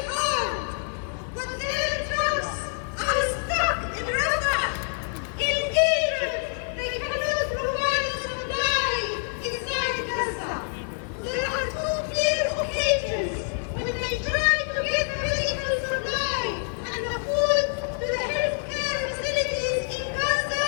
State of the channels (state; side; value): silent; right; 61 dB below the other